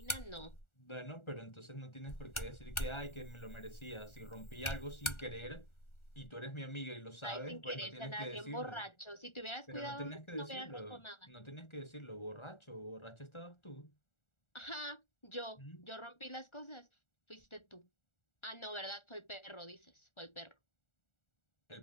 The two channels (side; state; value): right; late; 1.4 ms